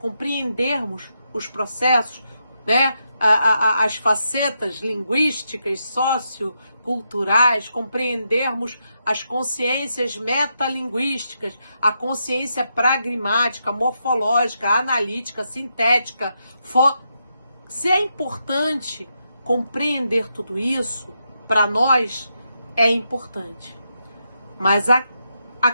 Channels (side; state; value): both; inverted; correlation -0.82